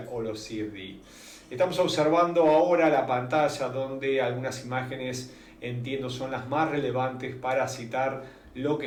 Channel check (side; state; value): both; identical; correlation 1.00